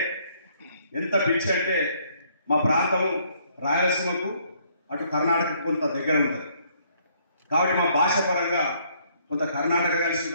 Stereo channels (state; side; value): inverted; both; correlation -0.66